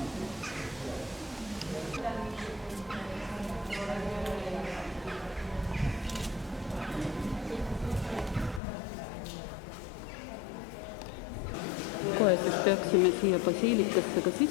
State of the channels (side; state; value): right; drops out; at 8.6 s